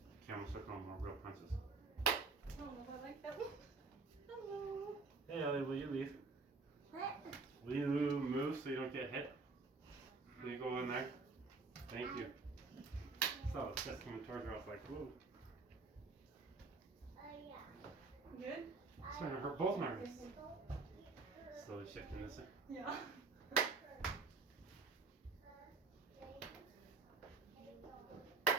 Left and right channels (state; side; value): quieter; left; 4.0 dB